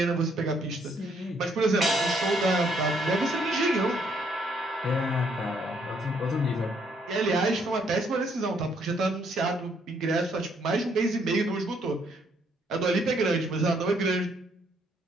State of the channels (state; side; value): normal; both; correlation 0.69